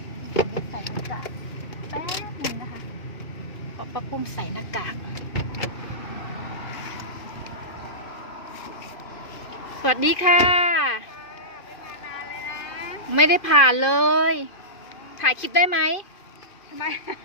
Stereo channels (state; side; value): late; right; 2.4 ms